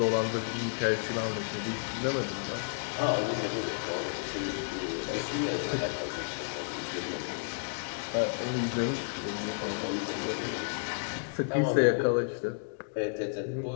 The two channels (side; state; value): right; silent; digital silence